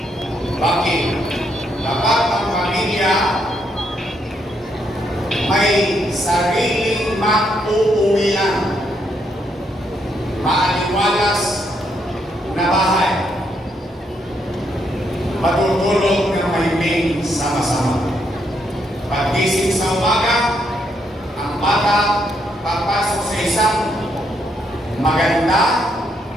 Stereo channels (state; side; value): normal; both; correlation 0.76